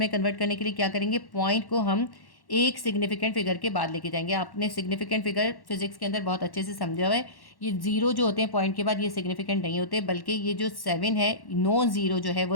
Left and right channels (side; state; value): right; late; 1.1 ms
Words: कन्वर्ट करने के लिए क्या करेंगे, पॉइंट को हम एक सिग्निफिकेंट फिगर के बाद लेके जाएंगे। आपने सिग्निफिकेंट फिगर फिजिक्स के अंदर बहुत अच्छे से समझा हुआ है। ये जीरो जो होते हैं पॉइंट के बाद ये सिग्निफिकेंट नहीं होते, बल्कि ये जो 7 है नॉन जीरो जो है